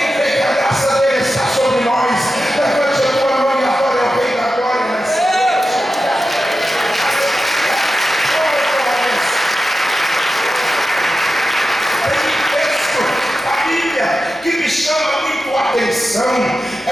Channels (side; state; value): both; normal; correlation 0.91